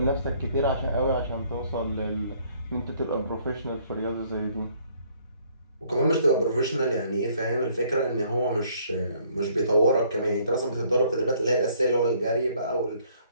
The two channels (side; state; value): both; inverted; correlation -0.63